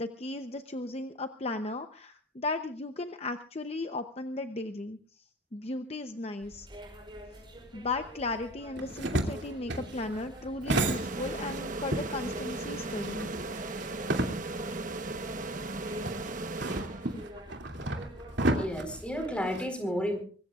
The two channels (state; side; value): normal; both; correlation 0.43